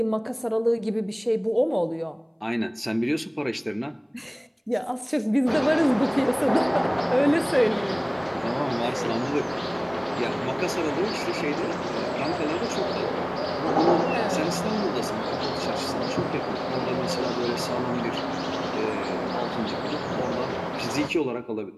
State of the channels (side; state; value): both; identical; correlation 1.00